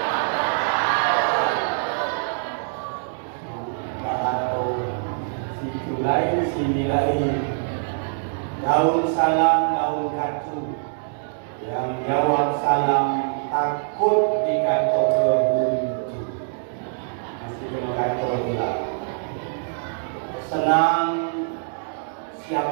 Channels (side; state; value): left; silent; digital silence